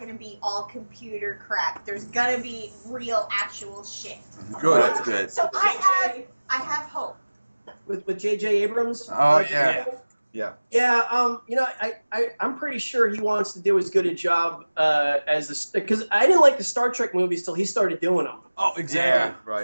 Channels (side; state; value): both; inverted; correlation -1.00